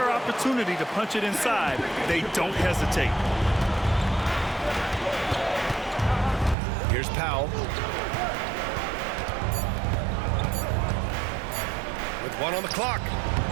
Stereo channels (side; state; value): left; drops out; at 6.6 s